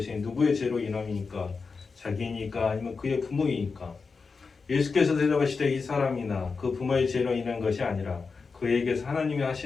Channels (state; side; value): quieter; right; 4.8 dB